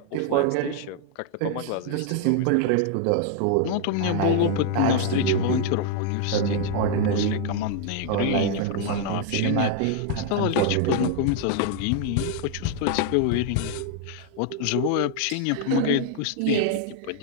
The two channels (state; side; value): different; both; correlation 0.00